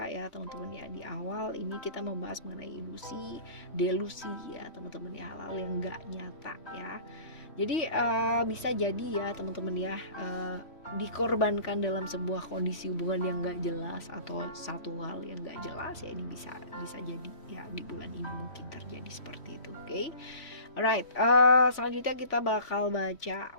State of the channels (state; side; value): late; right; 3.1 ms